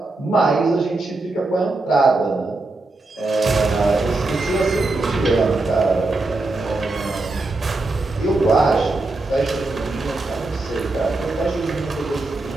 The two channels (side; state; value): left; quieter; 3.1 dB